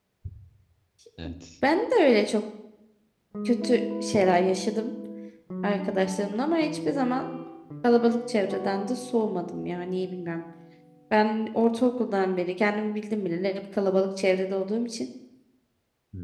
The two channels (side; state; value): both; identical; correlation 1.00